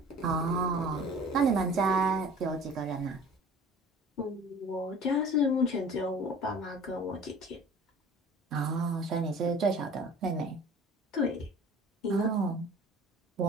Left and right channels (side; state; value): both; normal; correlation 0.45